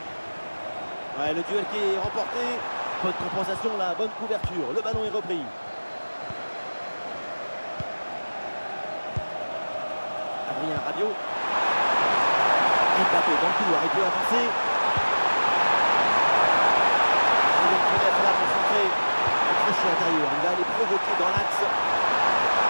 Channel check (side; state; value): both; inverted; correlation -1.00